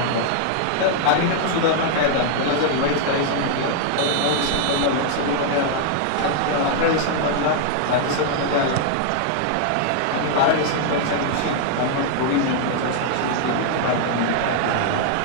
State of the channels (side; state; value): both; different; correlation 0.00